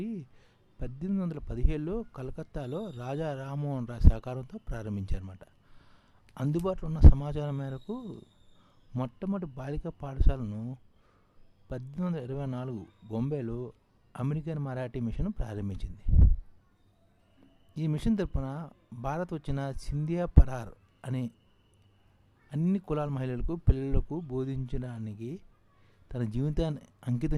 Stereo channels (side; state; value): both; identical; correlation 1.00